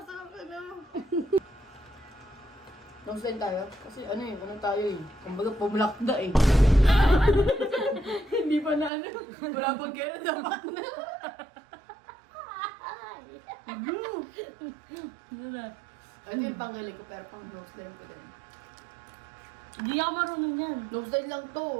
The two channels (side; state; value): left; drops out; at 8.9 s